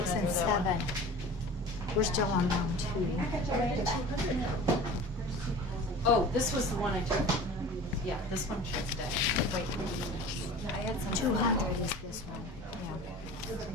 and 7. We're still on round 2. Oh, this was the one I took. Yeah, this one should stay. Wait. I had some. 200 is this one,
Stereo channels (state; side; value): normal; both; correlation 0.39